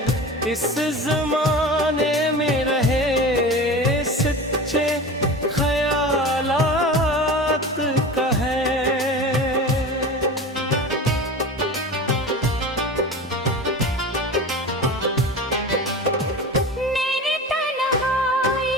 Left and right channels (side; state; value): both; normal; correlation 0.32